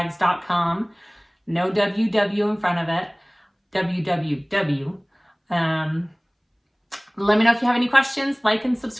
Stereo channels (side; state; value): both; identical; correlation 1.00